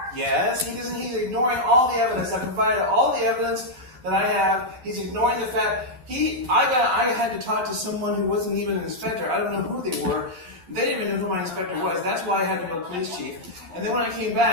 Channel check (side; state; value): left; late; 11 ms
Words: Yes, he's ignoring all the evidence. I provided all the evidence that I have. He's ignoring the fact I had to talk to someone who wasn't even an inspector. I don't know who they were. They didn't even know who my inspector was. That's why I had to go to the police chief. And then when I came